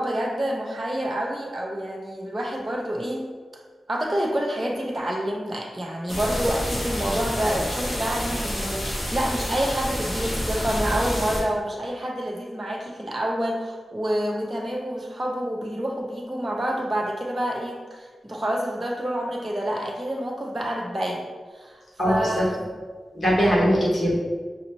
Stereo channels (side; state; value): both; normal; correlation 0.93